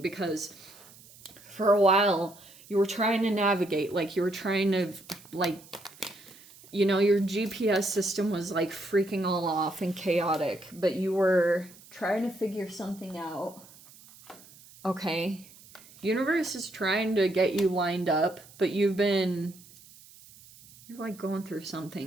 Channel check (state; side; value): noise; right; hiss, 23 dB below the sound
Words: because for a while you were trying to navigate, like you were trying to, like, you know, your GPS system was like freaking all off and chaotic, but you were trying to figure something out. Okay. Universe is trying to get you lined up, but you're like going through